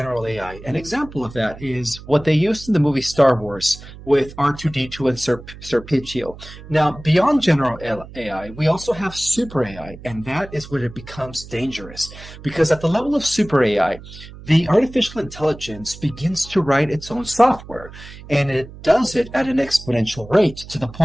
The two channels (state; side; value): noise; right; hum, 16 dB below the sound